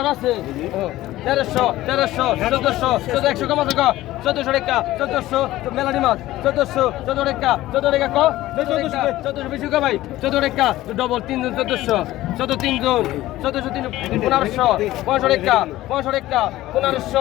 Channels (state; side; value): quieter; right; 16.0 dB